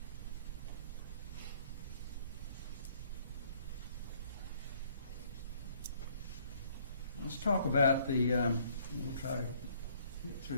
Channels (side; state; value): both; inverted; correlation -0.62